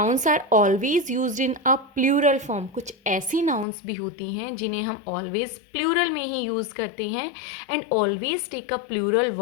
are always use in a plural form. कुछ ऐसी नाउन्स भी होती हैं जिन्हें हम ऑलवेज प्लूरल में ही यूज़ करते हैं and always take a plural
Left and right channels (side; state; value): right; drops out; at 3.7 s